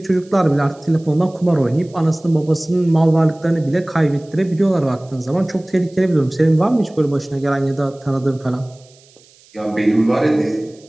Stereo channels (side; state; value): right; noise; hiss, 28 dB below the sound